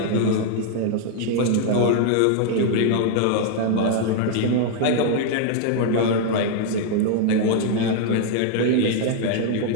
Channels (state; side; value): different; both; correlation 0.00